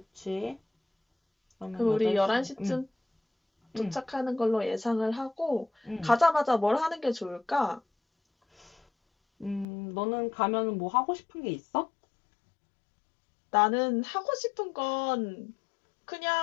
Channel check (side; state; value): right; drops out; at 9.7 s